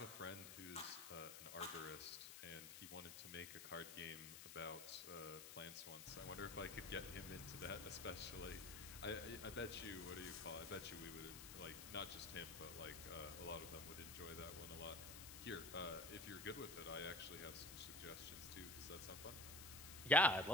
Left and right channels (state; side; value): noise; left; hiss, 10 dB below the sound